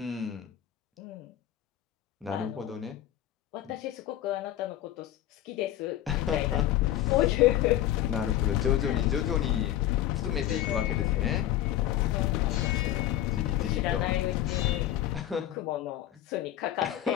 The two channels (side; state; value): right; quieter; 12.5 dB